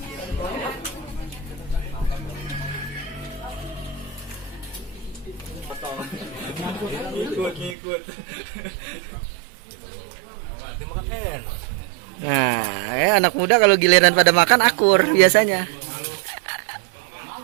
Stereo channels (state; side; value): drops out; left; at 7.8 s